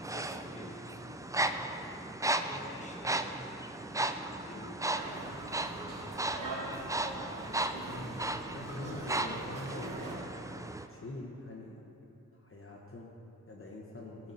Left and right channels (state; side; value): normal; both; correlation 0.19